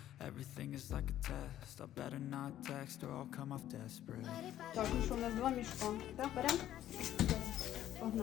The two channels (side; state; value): right; quieter; 12.3 dB